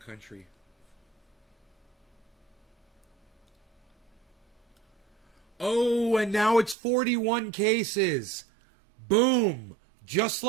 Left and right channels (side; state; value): left; drops out; at 6.8 s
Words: Oh, and now it's 41 cases. Boom. Just